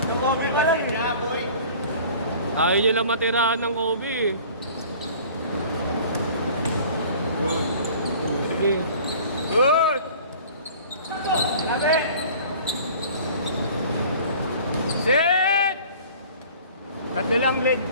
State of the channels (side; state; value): both; inverted; correlation -0.47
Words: Nakobi ba lang niya, boy? Ayaw nyo lang matirahan ng Kobe. Sige. Good! Labi! Sit! Tatlo lang, leg.